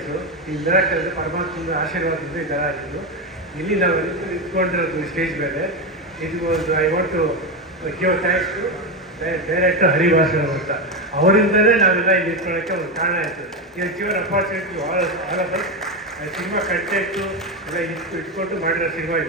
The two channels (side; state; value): both; normal; correlation 0.13